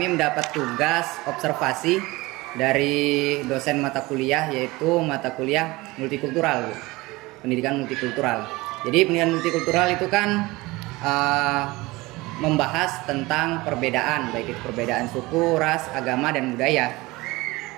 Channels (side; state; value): left; quieter; 21.4 dB